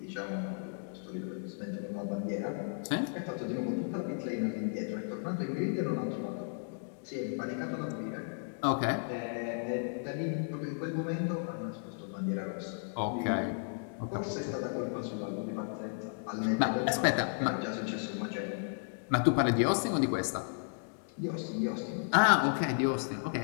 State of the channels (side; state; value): right; silent; digital silence